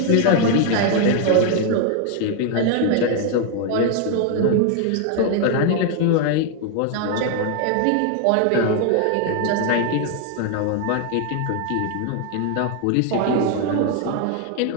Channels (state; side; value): different; both; correlation 0.00